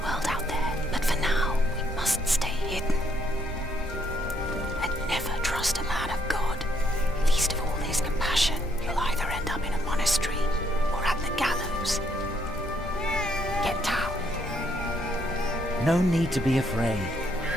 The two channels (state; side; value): normal; both; correlation 0.71